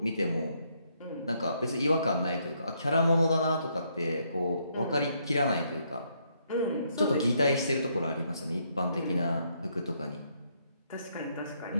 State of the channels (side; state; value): both; inverted; correlation -0.73